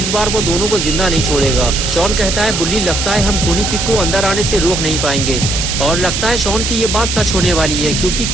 बार वो दोनों को जिंदा नहीं छोड़ेगा। शॉन कहता है, बुल्ली लगता है हम खूनी पिग को अंदर आने से रोक नहीं पाएंगे। और लगता है शॉन की ये बात सच होने वाली है, क्योंकि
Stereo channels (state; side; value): noise; right; hiss, 2 dB below the sound